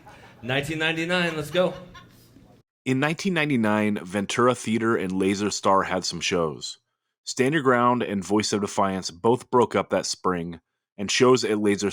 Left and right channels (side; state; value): both; identical; correlation 1.00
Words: 1999, let's go. In 1999, Ventura Theater and Laser Star had some shows. Stand Your Ground and Voice of Defiance both broke up that spring, and shows at Laser